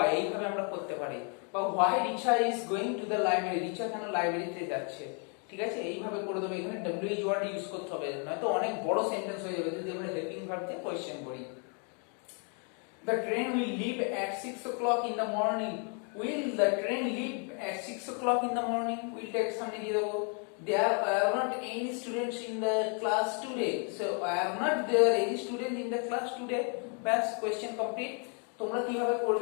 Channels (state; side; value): quieter; right; 39.7 dB